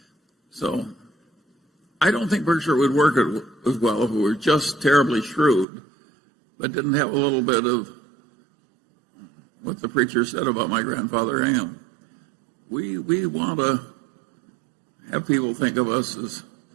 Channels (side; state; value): left; drops out; at 5.7 s